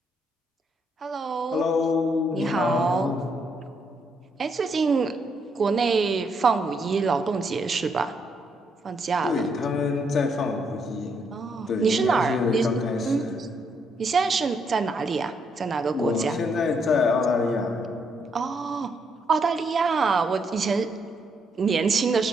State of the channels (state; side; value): normal; both; correlation 0.75